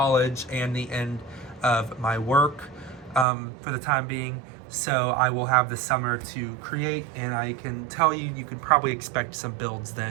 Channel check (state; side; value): drops out; left; at 3.2 s